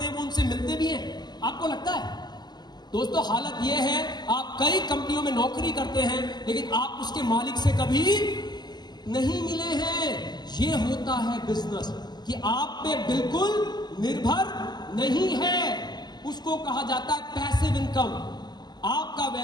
हैं वो उनसे मिलते भी हैं? आपको लगता है? दोस्तों, हालत यह है, आप कई कंपनियों में नौकरी करते हैं लेकिन आप उसके मालिक से कभी नहीं मिले हैं। ये होता है बिजनेस कि आप पे बिल्कुल निर्भर नहीं है, उसको कहा जाता है पैसिव इनकम। आपका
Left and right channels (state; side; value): late; right; 0.21 ms